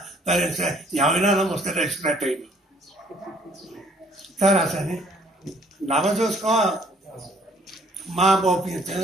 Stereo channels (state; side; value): normal; both; correlation 0.61